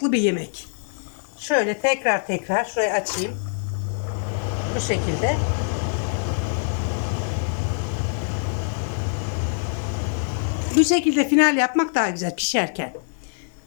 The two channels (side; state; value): right; silent; digital silence